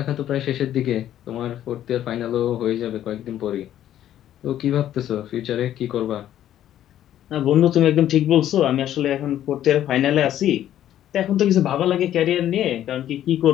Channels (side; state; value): right; quieter; 11.7 dB